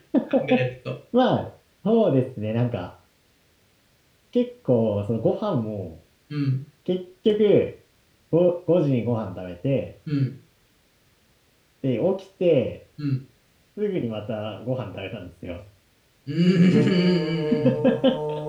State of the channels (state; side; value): identical; both; correlation 1.00